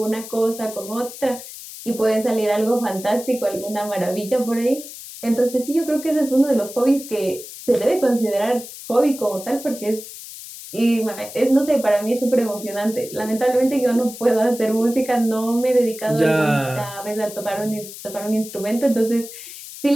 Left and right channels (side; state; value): left; noise; hiss, 13 dB below the sound